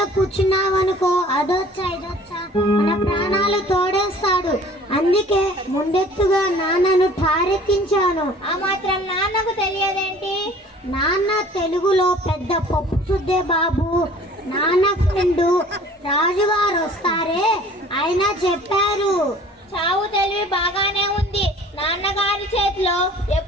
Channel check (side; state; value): both; normal; correlation 0.50